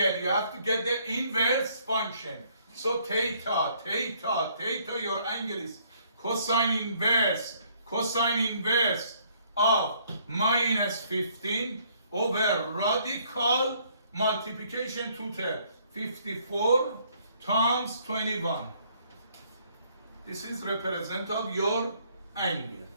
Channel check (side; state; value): both; inverted; correlation -0.65